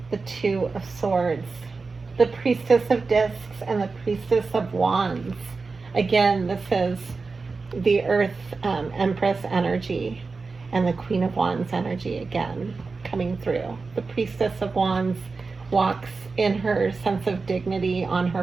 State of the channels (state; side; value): quieter; left; 4.2 dB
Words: The Two of Swords, the Priestess of Discs, and the Priestess of Wands. Again, this is the Earth Empress energy and the Queen of Wands energy again coming through. The Priestess of Wands walks in her sense of dignity on